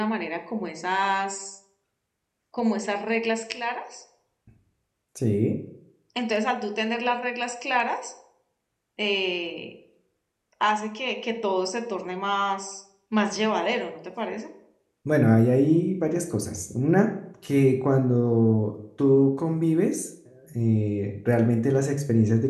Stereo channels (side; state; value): both; identical; correlation 1.00